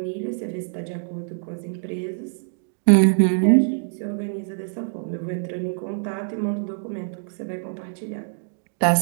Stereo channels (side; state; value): left; silent; digital silence